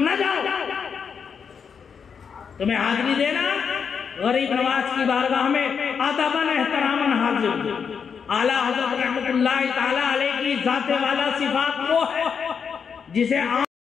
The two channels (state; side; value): quieter; right; 6.5 dB